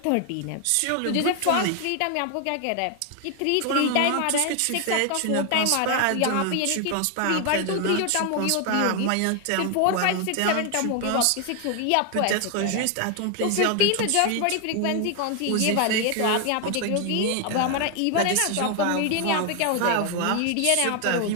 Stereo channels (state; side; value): different; both; correlation 0.01